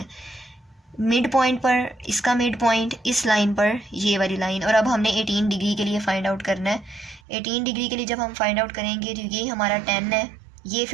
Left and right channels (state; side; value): drops out; left; at 7.2 s